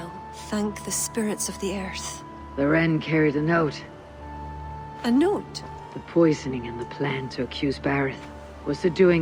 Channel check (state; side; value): identical; both; correlation 1.00